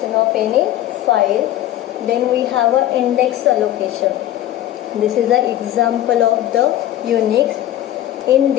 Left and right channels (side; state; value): right; quieter; 13.0 dB